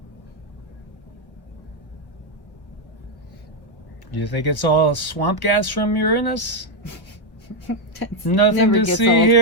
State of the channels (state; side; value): late; right; 1.1 ms